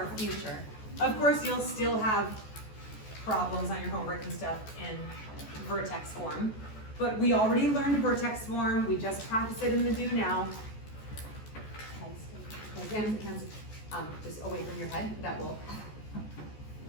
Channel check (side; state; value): right; late; 14 ms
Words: future. Of course, you'll still have problems on your homework and stuff in vertex form, but we already learned vertex form. We just practiced it in the do now. Hands, just away from your head. That will